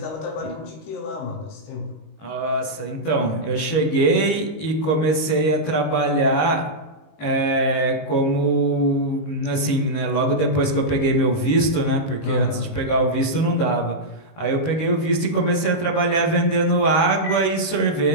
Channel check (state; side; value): late; right; 19 ms